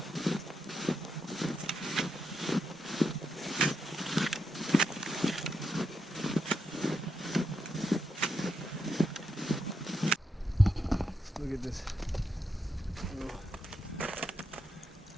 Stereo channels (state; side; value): normal; both; correlation 0.83